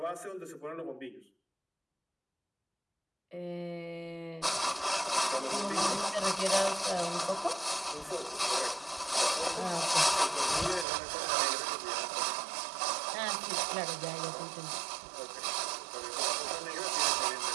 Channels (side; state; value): left; drops out; at 10.9 s